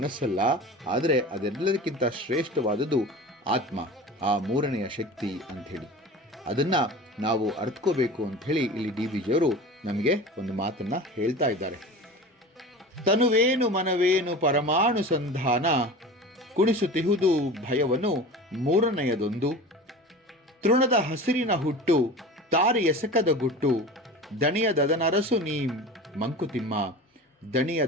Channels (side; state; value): both; normal; correlation 0.35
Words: ಆದರೆ ಅದೆಲ್ಲದಕ್ಕಿಂತ ಶ್ರೇಷ್ಠವಾದದ್ದು ಆತ್ಮ, ಆ ಮೂರನೆಯ ಶಕ್ತಿ ಅಂಥೇಳಿ. ಅದನ್ನು ನಾವು ಅರ್ಥಕೋಬೇಕು ಅಂಥೇಳಿ ಇಲ್ಲಿ ಡಿ ವಿ ಜಿಯವರು ನಮಗೆ ಒಂದು ಮಾತನ್ನು ಹೇಳ್ತಾ ಇದ್ದಾರೆ. ತನುವೇನು ಮನವೇನು ಪರಮಾಣು ಸಂಧಾನ, ಕುಣಿಸುತ್ತಿಹುದು ಭಯವನ್ನು ಮೂರನೆಯದೊಂದು. ತೃಣದ ಹಸಿರಿನ ಹುಟ್ಟು ತಾರೆ ಎಸಕದ ಗುಟ್ಟು, ದಣಿಯದನರಸು ನೀಂ ಮಂಕುತಿಮ್ಮ.